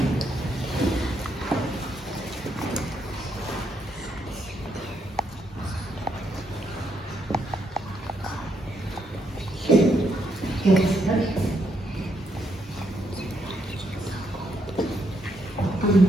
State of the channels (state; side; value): normal; both; correlation 0.76